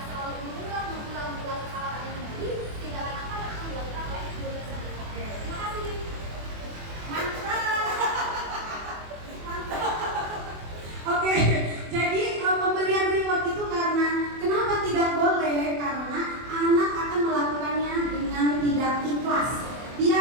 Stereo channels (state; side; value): late; left; 24 ms